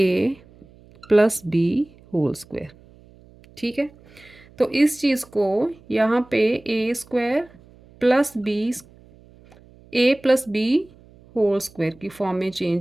plus B whole square. ठीक है, तो इस चीज़ को यहाँ पे A square plus B A plus B whole square की फॉर्म में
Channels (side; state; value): right; noise; hum, 26 dB below the sound